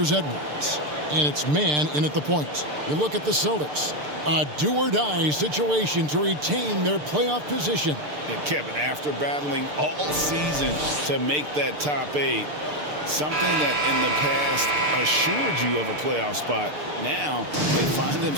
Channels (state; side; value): late; left; 6.7 ms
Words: Edwards. And it's man in at the point. You look at the Celtics. A do-or-die situation to retain their playoff position. And Kevin, after battling all season to make that top 8, something that in the past assured you of a playoff spot, now they find